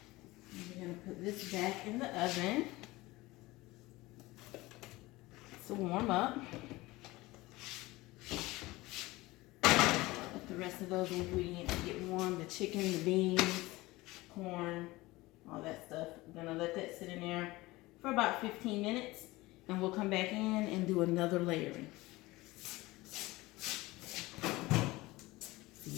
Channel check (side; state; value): right; quieter; 20.2 dB